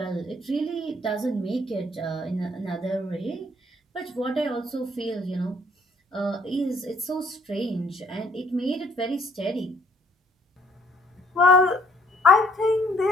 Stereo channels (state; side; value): normal; both; correlation 0.64